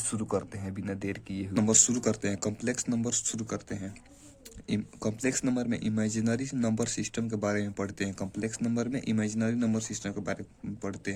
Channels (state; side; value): identical; both; correlation 1.00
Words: करते हैं बिना देर किए हुए। नंबर शुरू करते हैं, कॉम्प्लेक्स नंबर शुरू करते हैं। कॉम्प्लेक्स नंबर में इमेजिनरी नंबर सिस्टम के बारे में पढ़ते हैं। कॉम्प्लेक्स नंबर में इमेजिनरी नंबर सिस्टम के बारे में पढ़ते